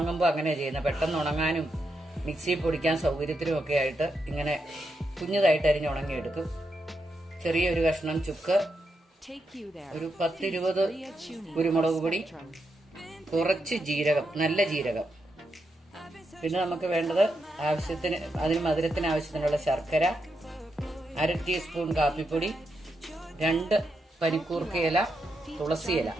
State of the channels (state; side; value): normal; both; correlation 0.83